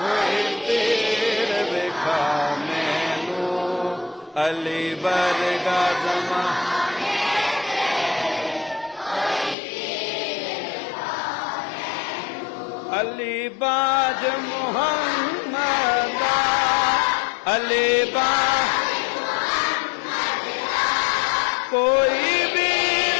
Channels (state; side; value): drops out; right; at 9.6 s